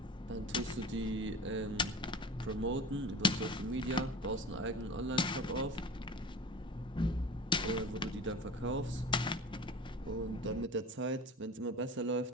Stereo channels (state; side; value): normal; both; correlation 0.37